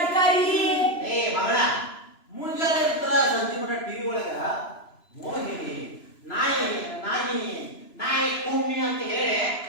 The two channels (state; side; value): late; right; 3.0 ms